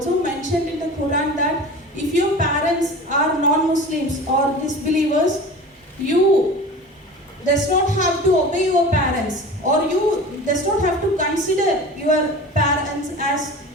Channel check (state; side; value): normal; both; correlation 0.36